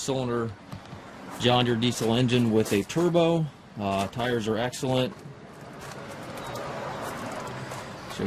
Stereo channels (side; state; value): both; identical; correlation 1.00